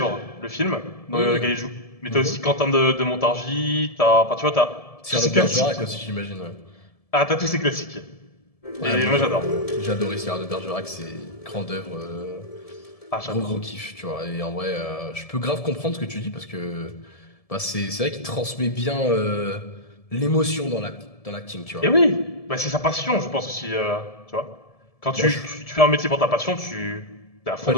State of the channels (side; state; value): right; late; 1.7 ms